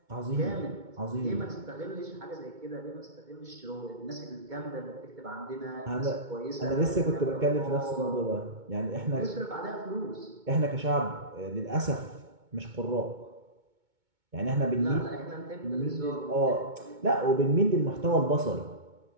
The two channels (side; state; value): left; late; 2.2 ms